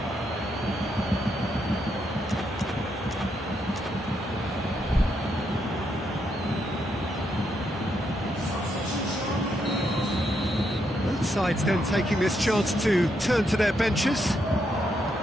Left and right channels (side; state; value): both; normal; correlation 0.79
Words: Sides then taking this chance to turn to their benches.